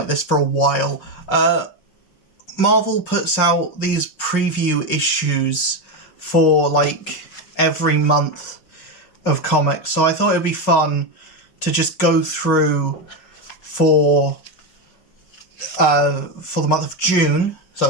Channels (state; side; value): late; right; 5.5 ms